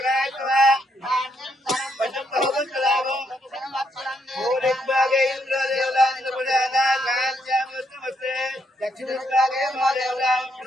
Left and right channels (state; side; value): normal; both; correlation 0.75